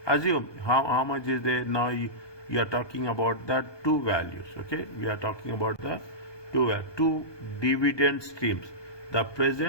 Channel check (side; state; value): right; late; 1.2 ms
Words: Assume how much is there now. You are talking about the two values. Okay, we are talking about the two dividend streams. The